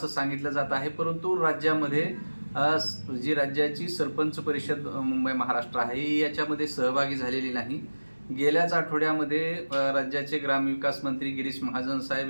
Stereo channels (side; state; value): both; inverted; correlation -1.00